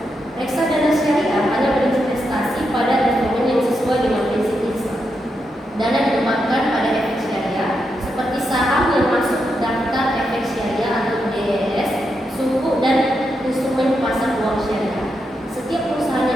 Reksadana syariah hanya berinvestasi pada instrumen yang sesuai dengan prinsip Islam. Dana ditempatkan pada efek syariah seperti saham yang masuk daftar efek syariah atau DES, suku dan instrumen pasar uang syariah. Setiap perusahaan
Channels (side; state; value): both; normal; correlation 0.84